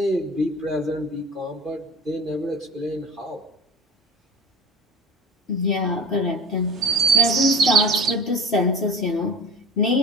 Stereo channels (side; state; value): both; normal; correlation 0.37